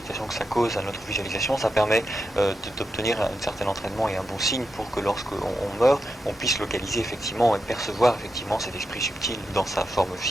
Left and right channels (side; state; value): both; normal; correlation 0.87